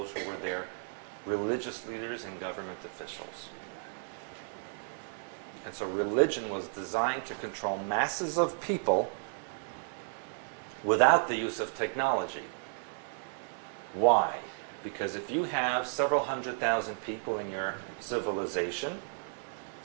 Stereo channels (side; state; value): left; silent; 56 dB below the other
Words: who were their religious leaders and government officials. And so religion was designed to control masses of people without the use of technology. Why? Because if you have several 100,000 people in your civilization,